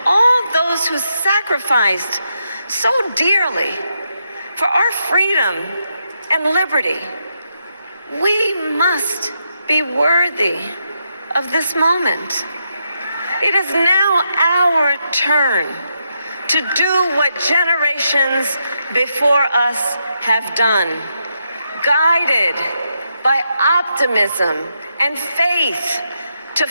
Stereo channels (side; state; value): both; inverted; correlation -0.81